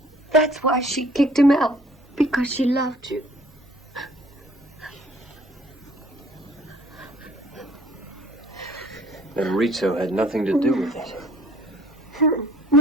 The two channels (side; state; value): both; normal; correlation 0.55